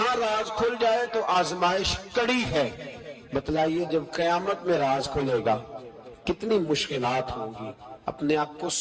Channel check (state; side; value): identical; both; correlation 1.00